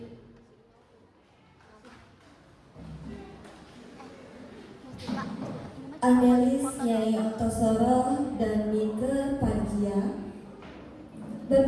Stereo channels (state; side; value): identical; both; correlation 1.00